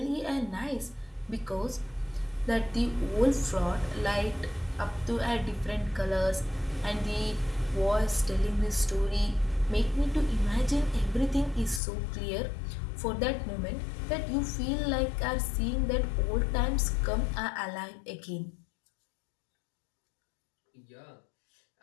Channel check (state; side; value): drops out; right; at 11.8 s